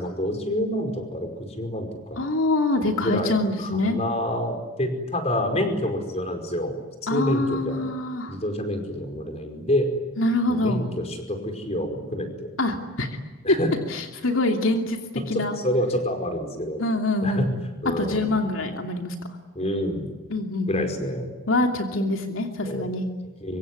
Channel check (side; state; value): both; normal; correlation 0.37